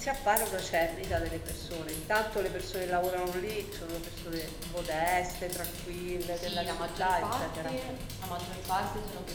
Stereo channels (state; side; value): identical; both; correlation 1.00